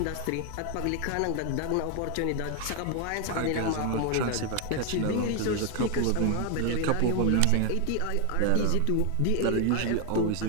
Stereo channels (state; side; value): different; both; correlation 0.01